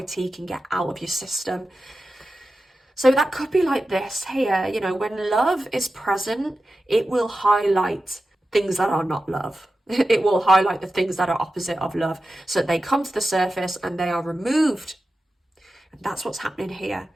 can get out of your system. So that could be like this here, you know, when love is present, it will highlight things that are not love. It will highlight the things that are opposite of love, so that they come to the surface and they are removed. And that's what's happening here.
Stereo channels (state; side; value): normal; both; correlation 0.93